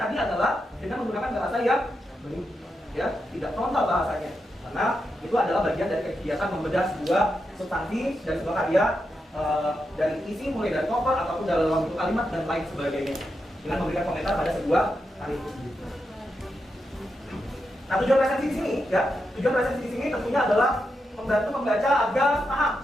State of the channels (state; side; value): normal; both; correlation 0.86